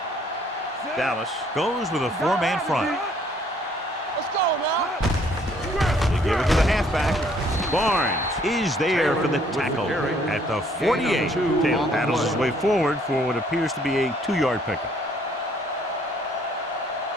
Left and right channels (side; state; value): both; normal; correlation 0.63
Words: Dallas goes with a 4-man front. Let's go now. They give it to the halfback. Barnes is there for the tackle at the 48. Taylor paddles his way forward for what appears to be a 2-yard pickup.